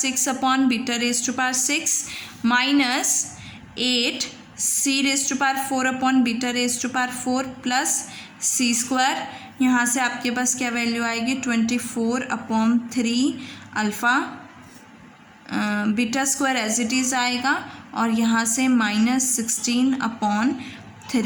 upon beta raise to power 6 minus 8 c raise to power 4 upon beta raise to power 4 plus c square. यहाँ से आपके पास क्या वैल्यू आएगी, 24 upon 3 alpha beta square as it is आएगा, और यहाँ से माइनस 16 अपॉन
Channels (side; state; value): both; identical; correlation 1.00